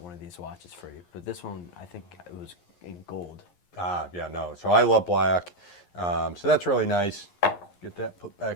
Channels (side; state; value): right; late; 11 ms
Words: one of these watches for you, but this one, I think it was in gold. Yeah, no. So I love black. So that's really nice. Get that put